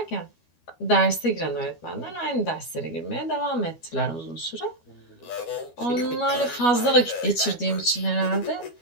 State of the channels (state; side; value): late; right; 12 ms